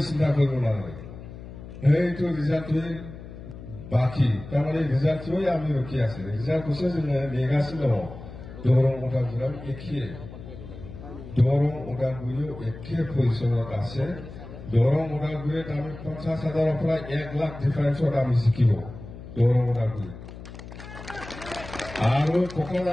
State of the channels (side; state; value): left; noise; hum, 13 dB below the sound